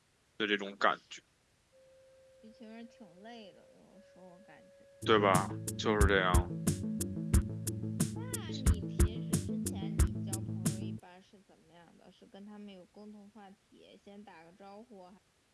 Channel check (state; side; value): identical; both; correlation 1.00